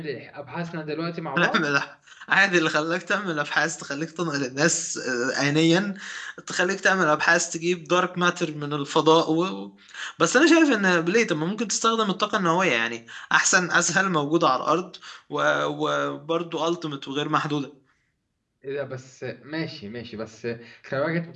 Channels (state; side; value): identical; both; correlation 1.00